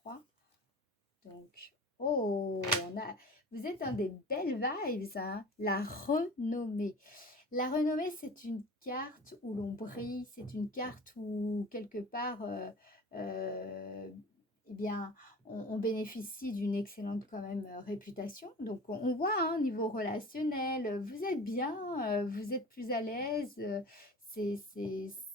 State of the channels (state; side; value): normal; both; correlation 0.39